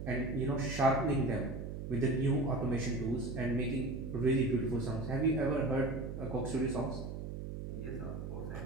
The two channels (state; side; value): noise; right; hum, 7 dB below the sound